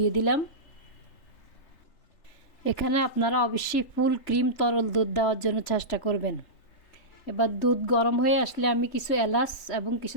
দিলাম। এখানে আপনারা অবশ্যই ফুল ক্রিম তরল দুধ দেওয়ার জন্য চেষ্টা করবেন। এবার দুধ গরম হয়ে আসলে আমি কিছু এলাচ এবং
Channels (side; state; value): right; late; 3.4 ms